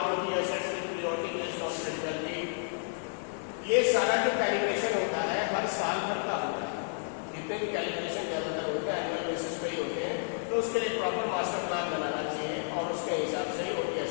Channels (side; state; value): right; silent; digital silence